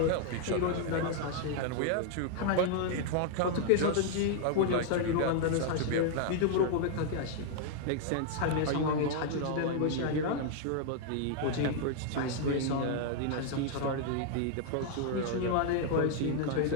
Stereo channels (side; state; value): both; different; correlation 0.00